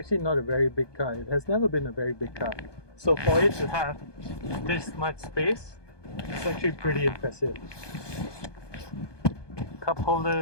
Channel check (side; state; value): right; late; 1.2 ms